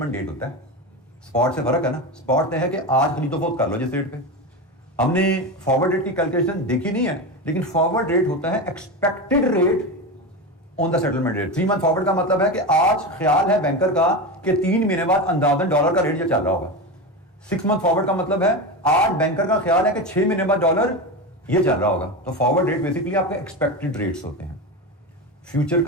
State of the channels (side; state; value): both; normal; correlation 0.20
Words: date होता है। स्पॉट से फर्क है ना, स्पॉट है कि आज खरीदो फरोख्त कर लो जिस रेट पे। हमने फॉरवर्ड रेट की कैलकुलेशन देखी नहीं है, लेकिन फॉरवर्ड रेट होता है expected rate on the settlement rate. 3 month forward का मतलब है कि आज ख्याल है बैंकर का कि 3 महीने बाद अंदाजन डॉलर का रेट ये चल रहा होगा। 6 मंथ फॉरवर्ड का मतलब है आज बैंकर का ख्याल है कि 6 महीने बाद डॉलर ये चल रहा होगा। तो फॉरवर्ड रेट बेसिकली आपके एक्सपेक्टेड रेट्स होते हैं। फ्यूचर